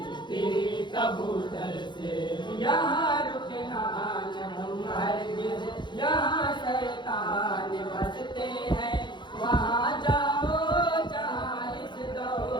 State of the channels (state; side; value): late; right; 0.22 ms